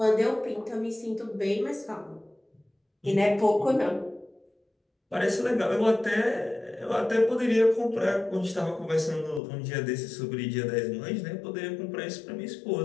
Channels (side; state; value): right; drops out; at 9.4 s